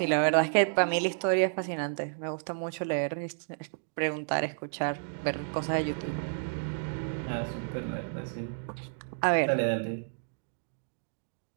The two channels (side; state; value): left; silent; digital silence